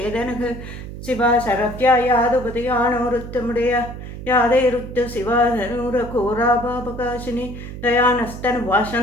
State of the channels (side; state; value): right; noise; hum, 10 dB below the sound